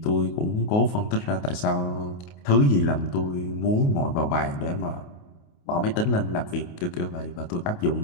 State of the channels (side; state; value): right; late; 28 ms